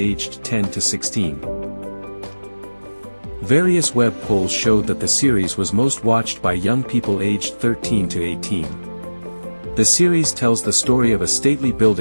10 to 16. Various web polls showed that the series was most watched by young people aged 13 to 18. The series tells the story of a stately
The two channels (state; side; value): inverted; both; correlation -1.00